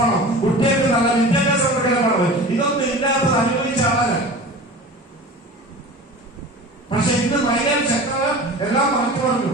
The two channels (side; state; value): both; normal; correlation 0.37